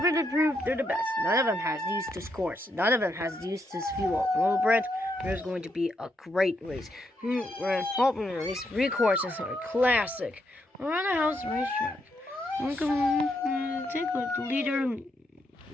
them prove they're the best. None of them has used this course. None of them has used this fuel. Well, Brent, there's going to be a great race. We're hoping these 3 courses are classic. Around the house racetrack. Take like the leader.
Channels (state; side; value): normal; both; correlation 0.79